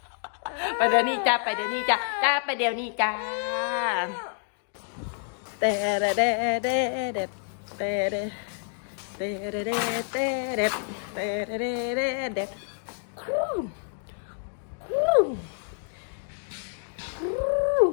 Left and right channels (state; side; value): silent; right; digital silence